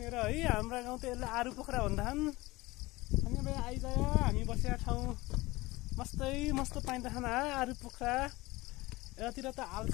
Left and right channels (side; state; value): right; quieter; 20.7 dB